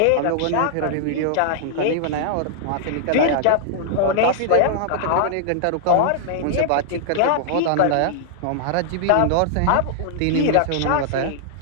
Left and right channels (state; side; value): different; both; correlation -0.01